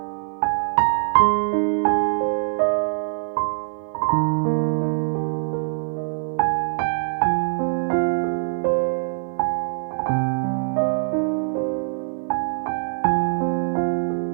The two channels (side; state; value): left; silent; 62 dB below the other